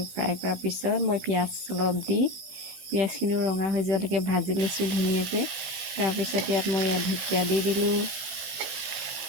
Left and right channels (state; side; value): late; left; 16 ms